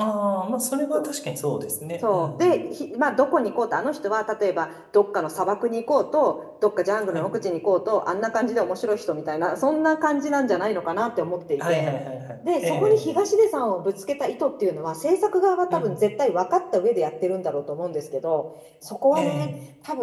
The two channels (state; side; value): identical; both; correlation 1.00